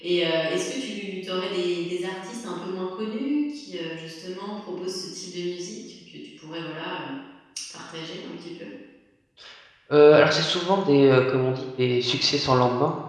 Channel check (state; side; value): identical; both; correlation 1.00